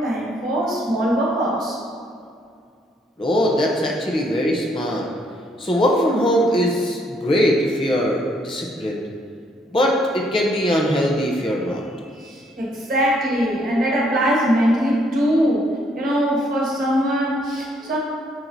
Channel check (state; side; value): normal; both; correlation 0.69